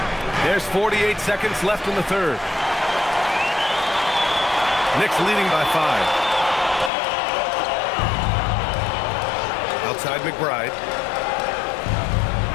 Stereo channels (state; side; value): drops out; right; at 6.9 s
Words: There's 48 seconds left in the 3rd. Knicks leading by 5. Outside McBride.